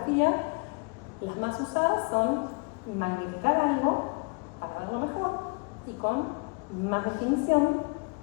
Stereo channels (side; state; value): right; quieter; 32.6 dB